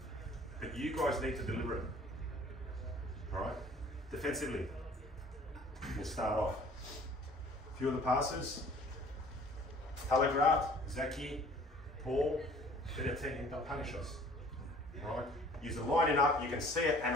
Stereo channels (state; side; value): normal; both; correlation 0.52